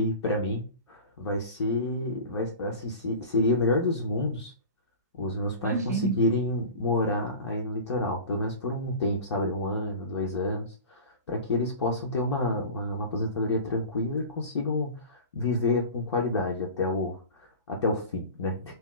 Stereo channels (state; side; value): inverted; both; correlation -0.35